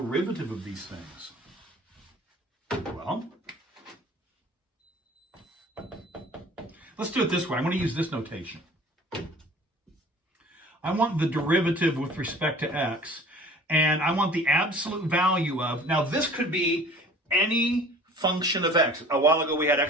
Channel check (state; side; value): normal; both; correlation 0.47